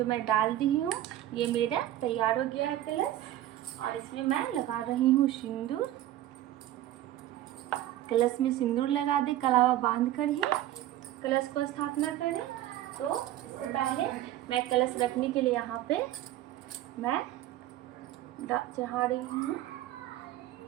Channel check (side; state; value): left; quieter; 13.6 dB